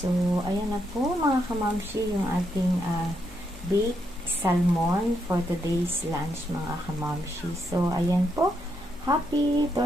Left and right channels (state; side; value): normal; both; correlation 0.79